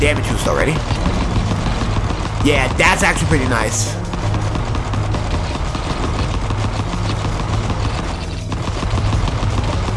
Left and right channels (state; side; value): identical; both; correlation 1.00